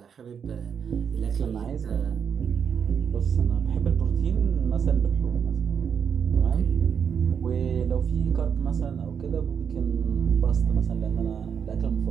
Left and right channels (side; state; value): left; quieter; 7.2 dB